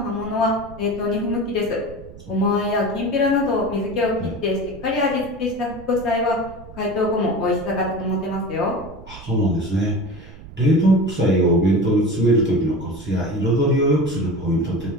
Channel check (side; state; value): right; noise; rumble, 17 dB below the sound